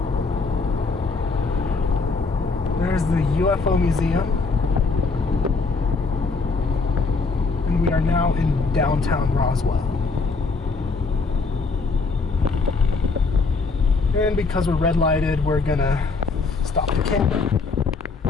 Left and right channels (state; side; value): quieter; right; 4.2 dB